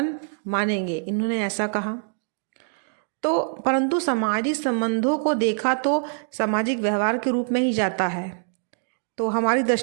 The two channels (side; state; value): left; silent; digital silence